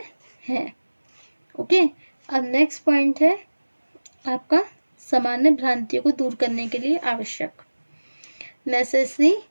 है। ओके, अब नेक्स्ट पॉइंट है आपका सामान्य भ्रांतियों को दूर करने के लिए आवश्यक, necessary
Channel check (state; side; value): inverted; both; correlation -1.00